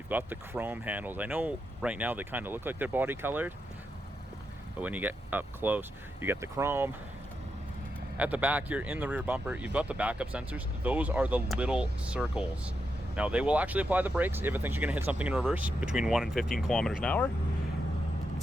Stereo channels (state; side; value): normal; both; correlation 0.85